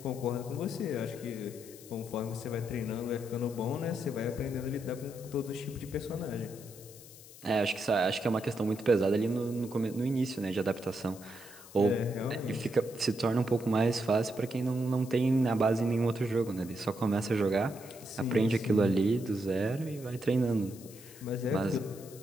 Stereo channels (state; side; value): noise; left; hiss, 19 dB below the sound